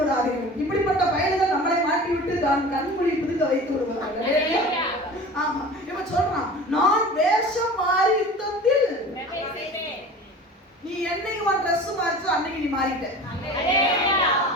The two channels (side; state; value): both; normal; correlation 0.38